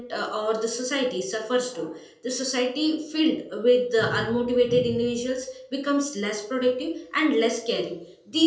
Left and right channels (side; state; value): both; identical; correlation 1.00